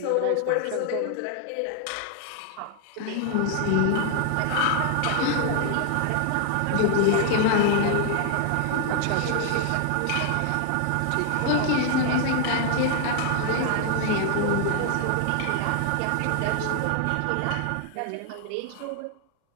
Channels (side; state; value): both; different; correlation 0.00